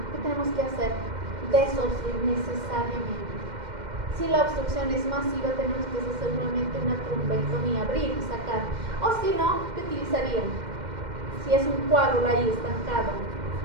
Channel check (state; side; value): late; left; 2.1 ms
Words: ¿Qué tenemos que hacer? Desobstruir necesariamente. Si la obstrucción es masiva, tenemos que hacer nuevamente una trombectomía, abrir y sacar. O si no, ¿qué utilizarían? Si es un coágulo ahí estancado.